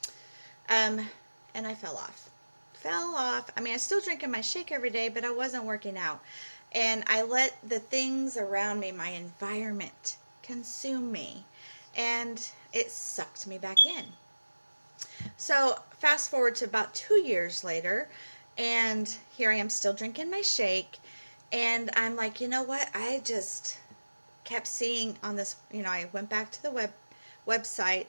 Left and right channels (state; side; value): inverted; both; correlation -1.00